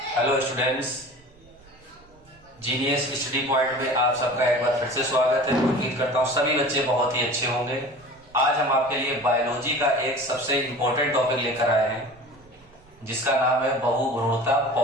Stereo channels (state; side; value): noise; right; rumble, 28 dB below the sound